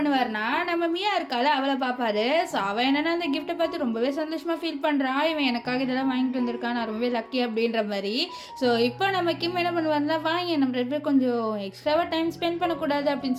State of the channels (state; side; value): identical; both; correlation 1.00